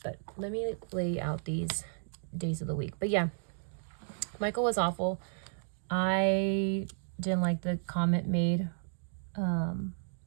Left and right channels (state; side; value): silent; left; digital silence